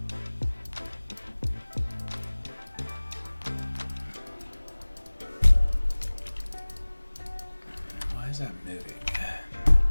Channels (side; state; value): both; inverted; correlation -1.00